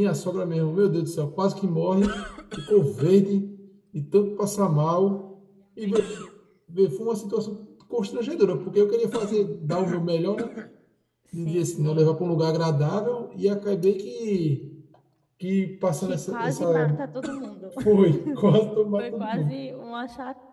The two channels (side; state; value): both; identical; correlation 1.00